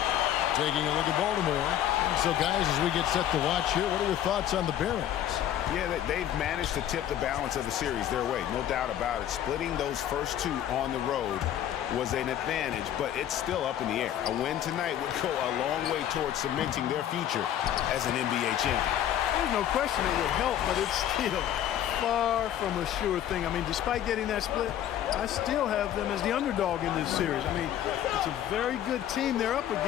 Taking a look at Baltimore. And so, guys, as we get set to watch here, what are your thoughts on the Barons? Yeah, they've managed to tip the balance of the series their way, no doubt about it. Splitting those first two on the road was an advantage, but it's still up in the air. A win tonight would go a long way towards cementing their future as an NBA champion. There's no question it would help, but it's still far from a sure thing. I mean, despite getting that split, I still have them as the underdog in this series. I mean, it's a very good team they're up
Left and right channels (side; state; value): right; quieter; 11.1 dB